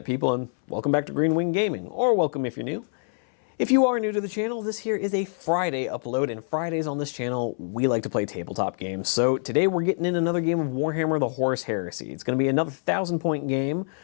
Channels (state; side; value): silent; right; 61 dB below the other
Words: people, and welcome back to Green Wing Gaming, or welcome if you're new. If you are new to the channel, this here is a Friday upload, and Fridays on this channel, we like to play tabletop games. So today we're getting in another game of Warhammer the Horus Heresy. It's going to be another 1,000-point game.